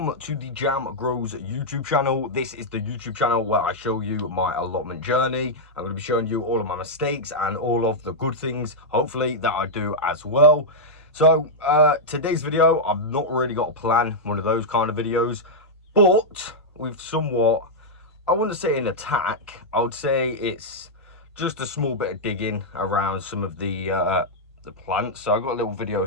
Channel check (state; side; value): normal; both; correlation -0.06